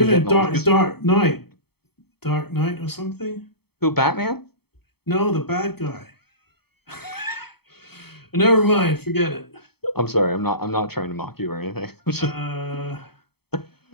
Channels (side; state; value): right; late; 0.96 ms